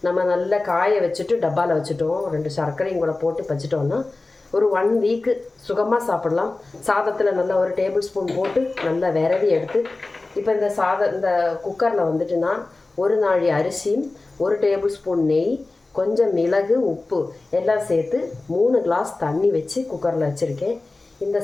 நம்ம நல்லா காய வச்சுட்டு டப்பாவில் வச்சுட்டோம், 2 சர்க்கரையும் கூட போட்டு வச்சுட்டோம்னா ஒரு 1 வீக்கு சுகமாக சாப்பிடலாம். சாதத்தில் நல்லா ஒரு டேபிள் ஸ்பூன் போட்டு நல்லா விரவி எடுத்து இப்போ இந்த குக்கரில் வந்துட்டுனா 1 நாழி அரிசியும் 1 டேபிள் ஸ்பூன் நெய், கொஞ்சம் மிளகு, உப்பு எல்லாம் சேர்த்து 3 கிளாஸ் தண்ணி வச்சு குக்கரில் வச்சுருக்கேன். இந்த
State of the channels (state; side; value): quieter; right; 3.3 dB